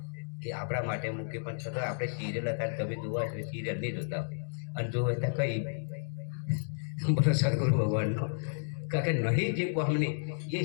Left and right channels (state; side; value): silent; right; digital silence